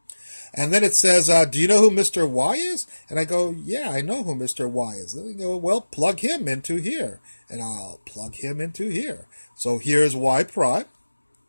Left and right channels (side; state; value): both; inverted; correlation -1.00